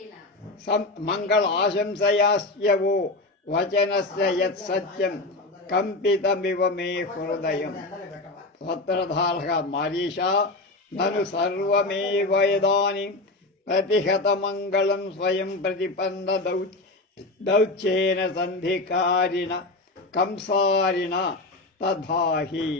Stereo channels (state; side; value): quieter; right; 3.0 dB